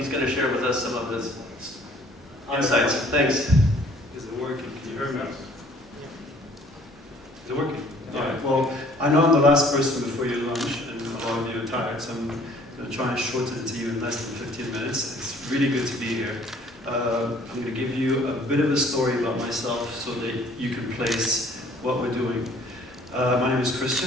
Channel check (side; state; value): both; normal; correlation 0.56